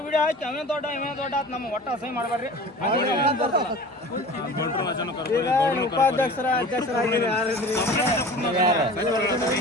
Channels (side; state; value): both; normal; correlation 0.39